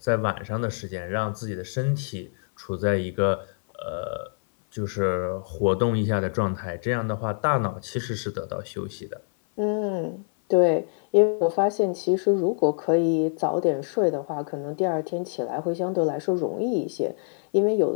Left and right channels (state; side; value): silent; right; 57 dB below the other